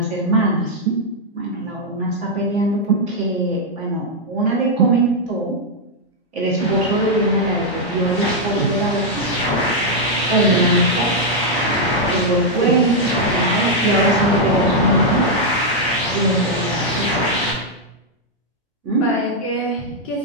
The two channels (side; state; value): both; normal; correlation -0.03